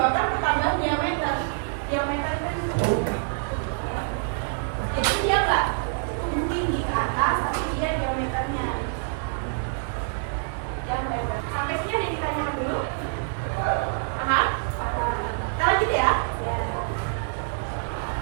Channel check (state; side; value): silent; left; digital silence